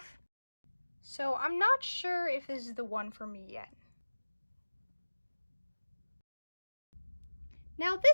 So I'm not sure if this is the one for me yet. Now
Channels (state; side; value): inverted; both; correlation -1.00